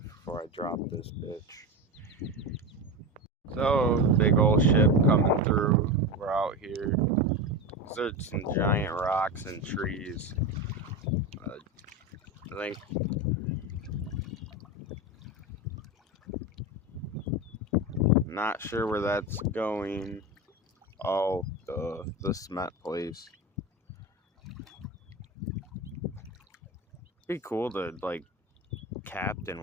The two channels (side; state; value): both; normal; correlation 0.21